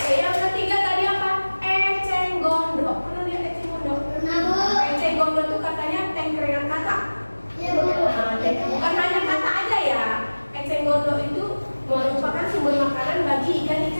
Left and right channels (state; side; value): inverted; both; correlation -1.00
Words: gondok itu merupakan sumber makanan bagi